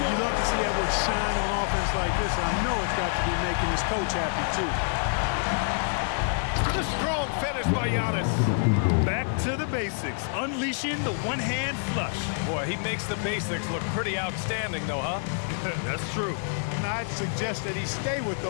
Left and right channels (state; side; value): silent; right; digital silence